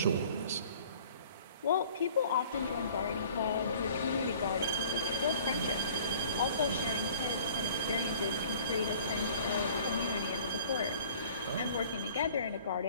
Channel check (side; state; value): both; inverted; correlation -0.50